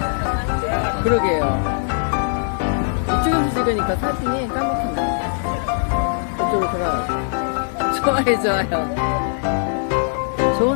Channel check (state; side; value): silent; right; digital silence